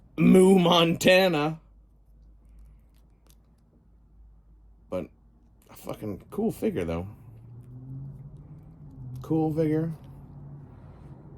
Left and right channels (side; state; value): both; identical; correlation 1.00